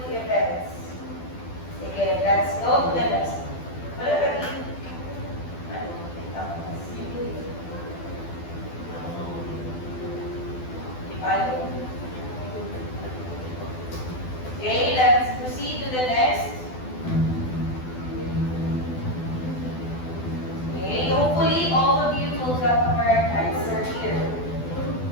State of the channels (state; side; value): late; right; 12 ms